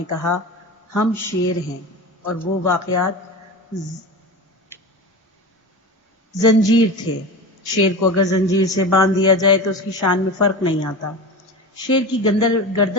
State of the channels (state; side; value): normal; both; correlation 0.27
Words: کہا ہم شیر ہیں، اور وہ واقعات زنجیر تھے. شیر کو اگر زنجیر سے باندھ دیا جائے تو اس کی شان میں فرق نہیں آتا. شیر کی